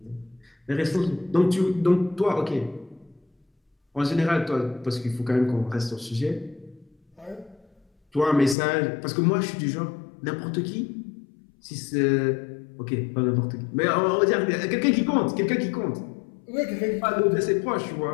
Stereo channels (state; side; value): drops out; right; at 8.6 s